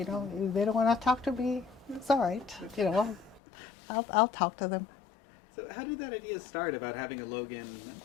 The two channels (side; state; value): right; drops out; at 3.4 s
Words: know. If they don't want to talk to me, it's all right. You know, I'll talk to them. So how did that idea start about having a Logan?